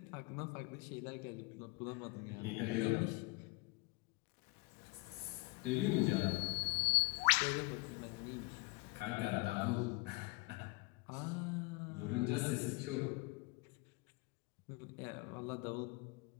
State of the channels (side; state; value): right; quieter; 25.3 dB